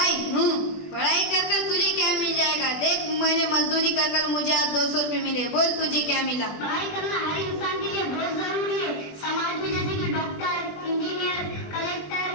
पढ़ाई कर कर तुझे क्या मिल जाएगा? देख, मैंने मजदूरी कर कर मुझे आज 200 रुपए मिले। बोल तुझे क्या मिला? पढ़ाई करना हर इंसान के लिए बहुत जरूरी है। समाज में जैसे कि डॉक्टर, इंजीनियर, कलेक्टर,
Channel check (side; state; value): right; late; 20 ms